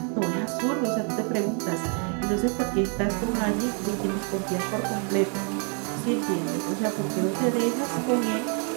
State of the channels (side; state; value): left; quieter; 39.7 dB